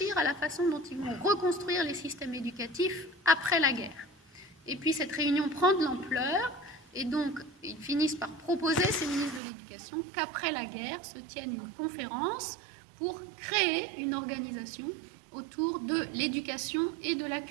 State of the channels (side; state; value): left; drops out; at 9.4 s